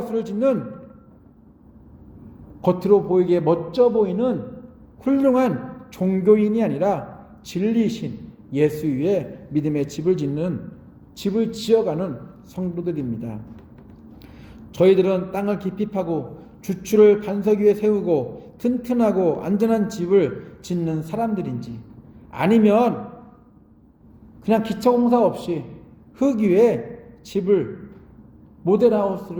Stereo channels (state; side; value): identical; both; correlation 1.00